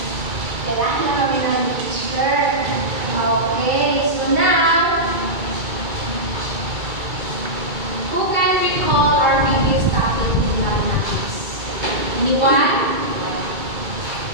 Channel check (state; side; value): late; left; 2.3 ms